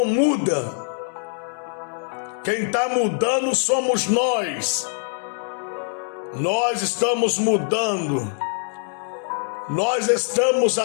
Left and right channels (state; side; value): silent; right; 57 dB below the other